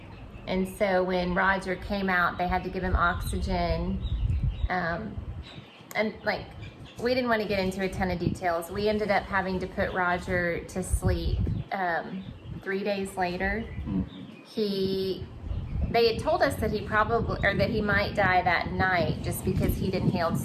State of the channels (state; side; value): identical; both; correlation 1.00